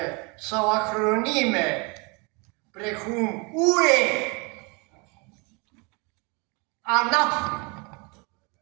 sau acronime, precum UE, ANAF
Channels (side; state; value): left; quieter; 30.2 dB